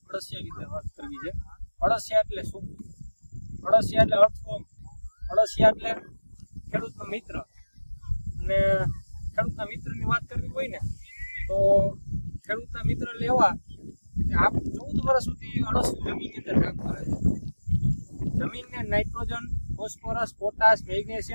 અળસિયા વિશે વાત કરવી છે। અળસિયા એટલે શું? અળસિયા એટલે અર્થફોર્મ। અળસિયા એટલે ખેડૂતનો મિત્ર। અને ખેડૂતના મિત્રની વાત કરવી હોય ને તો ખેડૂતના મિત્ર લેવા આ 14 વર્ષ સુધી અળસિયું જમીનની અંદર કામ કરે છે। જમીનને નાઇટ્રોજન, ફોસ્ફરસ, પોટાશ,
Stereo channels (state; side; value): inverted; both; correlation -1.00